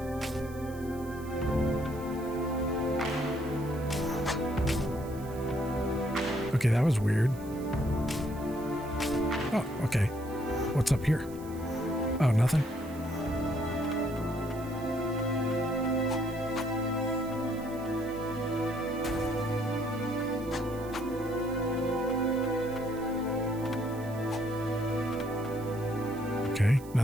Okay, that was weird. Oh, okay. What's up here? Oh, nothing. Okay,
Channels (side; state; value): right; noise; hiss, 21 dB below the sound